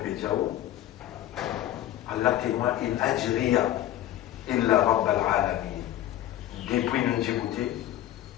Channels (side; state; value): right; quieter; 13.1 dB